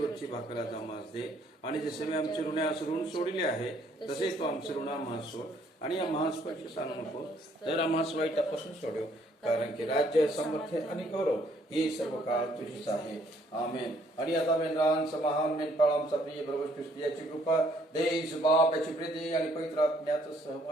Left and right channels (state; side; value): normal; both; correlation 0.65